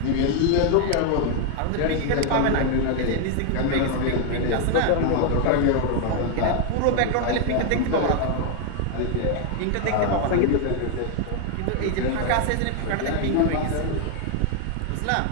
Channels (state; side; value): different; both; correlation 0.00